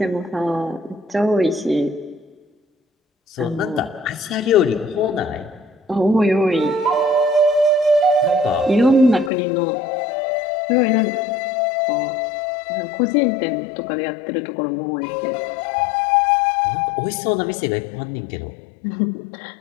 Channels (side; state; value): right; drops out; at 9.3 s